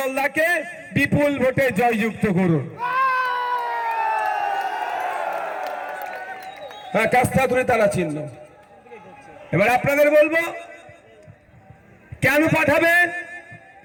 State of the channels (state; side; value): identical; both; correlation 1.00